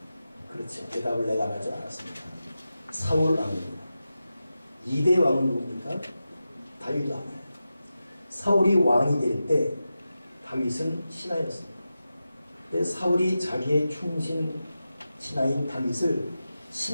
그렇죠. 대답을 내가 하지 않았습니다. 사울 왕입니다. 2대 왕은 누굽니까? 다윗 왕이에요. 사울이 왕이 될 때 다윗은 신하였습니다. 근데 사울이 자기의 충신 신하인 다윗을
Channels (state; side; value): inverted; both; correlation -0.92